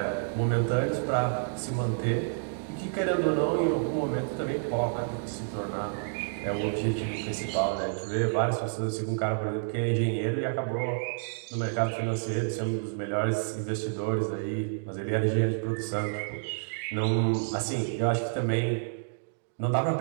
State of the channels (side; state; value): left; silent; digital silence